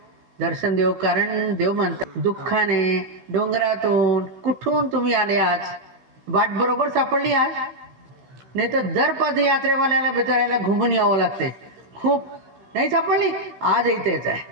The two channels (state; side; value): late; left; 16 ms